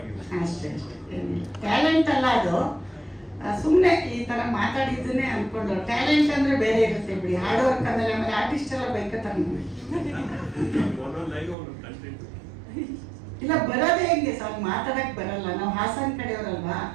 ಅಷ್ಟೇ. ಟ್ಯಾಲೆಂಟ್ ಅಲ್ಲ ಅದು, ಸುಮ್ಮನೆ ಈ ತರ ಮಾತಾಡಿದ್ದನ್ನೇ ಅನ್ಕೊಂಡು. ಟ್ಯಾಲೆಂಟ್ ಅಂದ್ರೆ ಬೇರೆ ಇರುತ್ತೆ ಬಿಡಿ, ಹಾರ್ಡ್ ವರ್ಕ್ ಅಂದ್ರೆ. ಆಮೇಲೆ ಆರ್ಟಿಸ್ಟ್ ಎಲ್ಲ ಬೈಕತ್ತಾರೆ. ಇಲ್ಲ ಬರೋದೇ ಹೆಂಗೆ ಸರ್, ಮಾತಾಡಕ್ ಬರಲ್ಲ. ನಾವು ಹಾಸನ್ ಕಡೆಯವರಲ್ವಾ,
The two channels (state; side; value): drops out; left; at 11.6 s